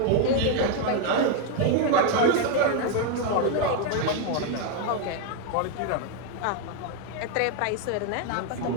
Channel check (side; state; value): both; different; correlation 0.01